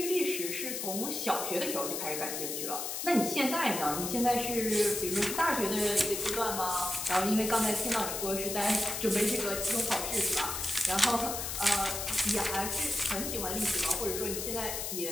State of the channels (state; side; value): noise; left; hiss, 4 dB below the sound